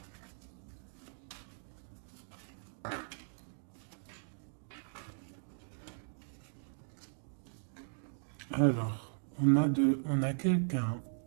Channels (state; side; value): silent; left; digital silence